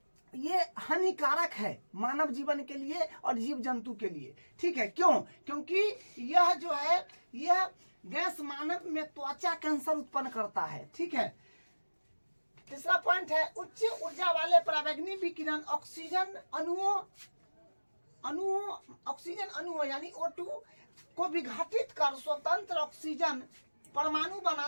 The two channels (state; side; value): inverted; both; correlation -1.00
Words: ये हानिकारक है मानव जीवन के लिए और जीव जंतु के लिए। ठीक है, क्यों? क्योंकि यह जो है यह गैस मानव में त्वचा कैंसर उत्पन्न करता है। ठीक है, तीसरा पॉइंट है, उच्च ऊर्जा वाले परावैंगनी विकिरण ऑक्सीजन अणुओं यानी O2 को विघटित कर स्वतंत्र ऑक्सीजन परमाणु